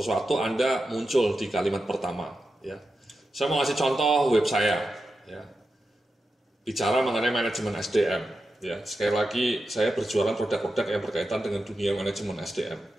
Anda muncul di kalimat pertama. Ya. Saya mau kasih contoh web saya. Ya. Bicara mengenai manajemen SDM. Ya, sekali lagi saya berjualan produk-produk yang berkaitan dengan dunia manajemen SDM.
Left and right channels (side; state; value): both; normal; correlation 0.90